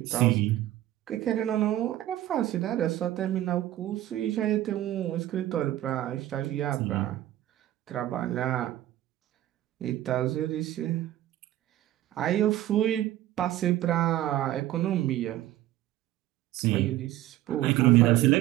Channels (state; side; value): quieter; left; 14.0 dB